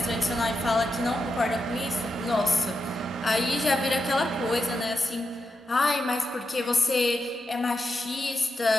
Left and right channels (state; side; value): normal; both; correlation 0.86